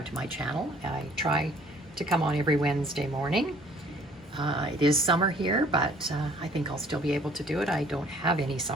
to my channel. I try to come on every Wednesday morning. It is summer here, but I think I'll still be able to do it. I don't have any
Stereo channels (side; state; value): both; normal; correlation 0.57